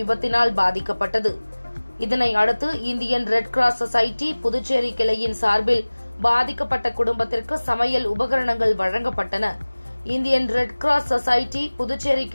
பாதிக்கப்பட்டது. இதனை அடுத்து Indian red cross society Puducherry கிளையின் சார்பில் பாதிக்கப்பட்ட குடும்பத்திற்கு சமையல் உபகரணங்கள் வழங்கப்பட்டன. Indian red cross society Puducherry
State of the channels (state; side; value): inverted; both; correlation -1.00